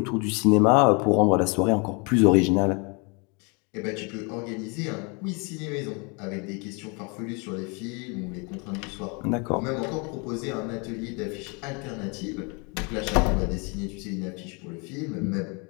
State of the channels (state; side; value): quieter; right; 32.1 dB